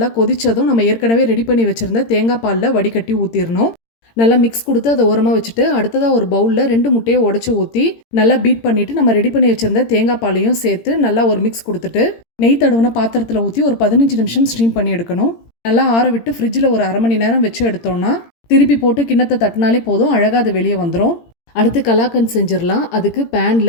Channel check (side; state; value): right; late; 18 ms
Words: கொதிச்சதும் நம்ம ஏற்கனவே ரெடி பண்ணி வச்சுருந்த தேங்காய் பாலில் வடிகட்டி ஊற்றிடணும். நல்லா மிக்ஸ் கொடுத்து அதை ஓரமாக வச்சுட்டு அடுத்ததாக ஒரு பவுலில் 2 முட்டையை உடச்சி ஊற்றி நல்லா பீட் பண்ணிவிட்டு நம்ம ரெடி பண்ணி வச்சுருந்த தேங்காய் பாலையும் சேர்த்து நல்லா ஒரு மிக்ஸ் கொடுத்துட்டு நெய் தடவுன பாத்திரத்தில் ஊற்றி ஒரு 15 நிமிஷம் ஸ்டீம் பண்ணி எடுக்கணும். நல்லா ஆற விட்டு ஃப்ரிட்ஜில் ஒரு அரை மணி நேரம் வச்சு எடுத்தோம்னா திருப்பி போட்டு கிண்ணத்தை தட்டினாலே போதும், அழகாக அது வெளியே வந்துடும். அடுத்து கலாக்கன் செஞ்சிடலாம். அதுக்கு